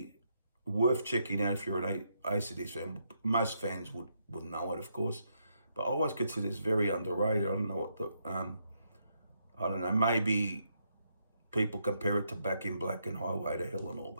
worth checking out if you're an AC/DC fan. Most fans would know it, of course, but I always consider this very underrated. I don't know what I don't know, maybe people compare it to Back in Black and Highway to Hell and all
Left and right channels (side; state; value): both; inverted; correlation -0.77